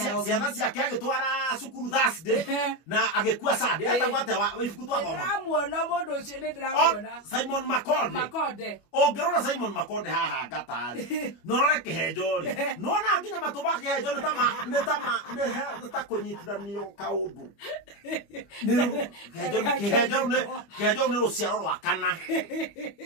ciana ciake agĩtwara cukuru Thursday na agĩkua Sunday etagwo atĩa ibuku twathoma. Ndĩramuona mũndũ ũcio nĩ ndĩramuona Simon Makonde. Ũngĩrora Simon Makonde haha ngatarĩ no rore kĩhenjo rĩ no na nginya matũ ma kĩhenjo nĩ ta kũnyitithanio kaũndũ. Kĩhenjo nĩ rũciaro rwa kana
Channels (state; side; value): late; right; 25 ms